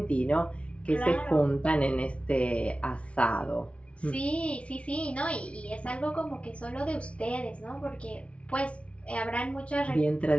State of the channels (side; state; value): right; late; 0.061 ms